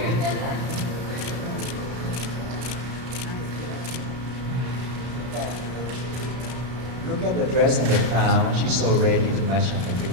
Look at the dress and the crown. She's so ready to match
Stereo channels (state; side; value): late; left; 32 ms